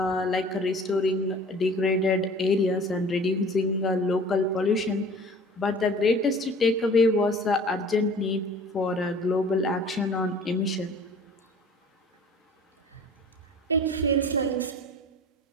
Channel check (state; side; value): normal; both; correlation 0.46